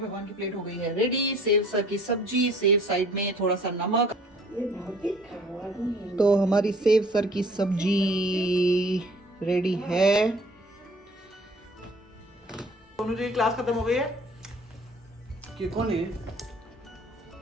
की प्लेट हो गई है रेडी। सेव सर की सब्जी, सेव साइड में थोड़ा सा नमक। तो हमारी सेव सर की सब्जी रेडी है। दोनों जी की क्लास खत्म हो गई है। कि कौन है?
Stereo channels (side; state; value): both; normal; correlation 0.53